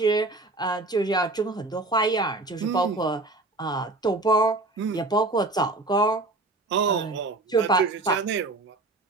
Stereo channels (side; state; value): left; quieter; 3.0 dB